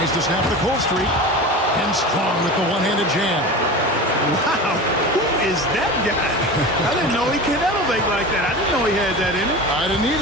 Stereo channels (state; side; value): normal; both; correlation 0.31